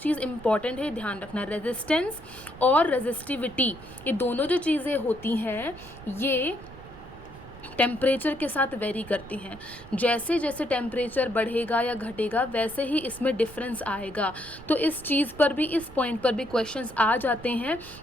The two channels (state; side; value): noise; right; rumble, 18 dB below the sound